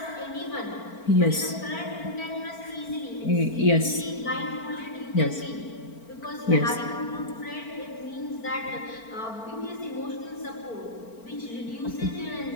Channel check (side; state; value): right; late; 4.4 ms